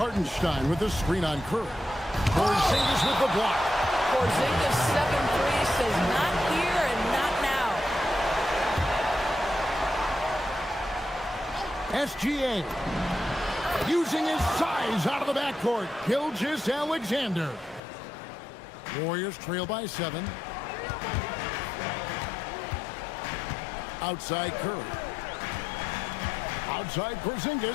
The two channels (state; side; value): drops out; right; at 17.8 s